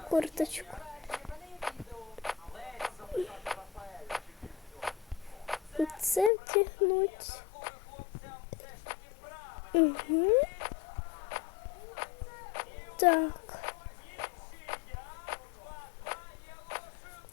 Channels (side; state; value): right; drops out; at 6.3 s